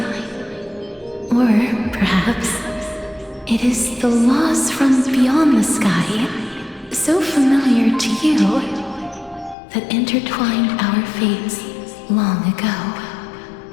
Or perhaps it is the laws from beyond the sky, so familiar to you, that intertwined our fates long ago.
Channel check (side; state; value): right; drops out; at 9.6 s